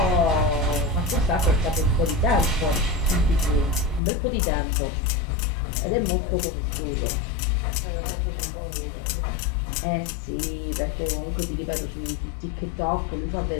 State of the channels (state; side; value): drops out; right; at 4.0 s